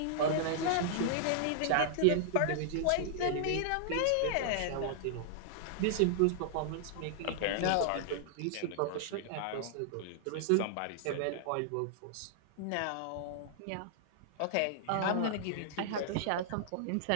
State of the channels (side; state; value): both; different; correlation -0.01